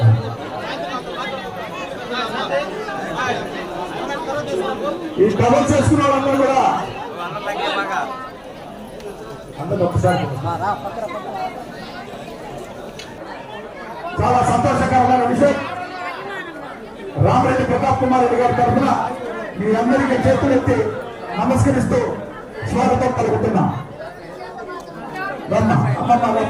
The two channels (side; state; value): both; identical; correlation 1.00